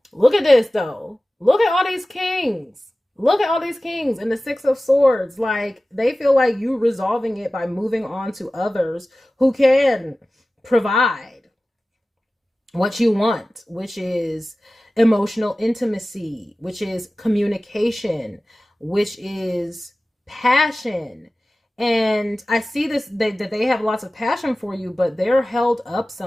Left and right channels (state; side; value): normal; both; correlation 0.96